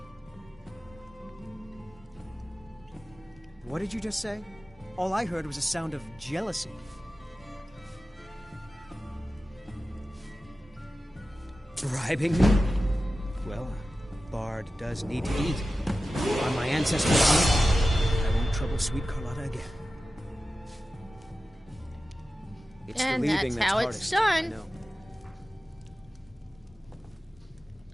What did you just say? All I heard was a sound of jealousy. Bribing me? Well, a bard does need to eat. On my ancestors' honor, I won't trouble sweet Carlotta again. It's And the leaving that's how hardest, it's done. I know.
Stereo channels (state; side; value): normal; both; correlation 0.94